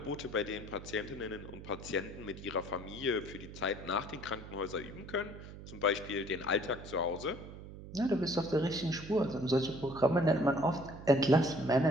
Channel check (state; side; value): noise; right; hum, 13 dB below the sound